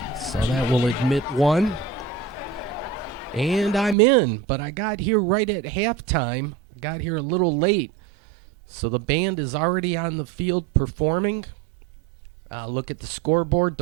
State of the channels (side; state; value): left; drops out; at 4.0 s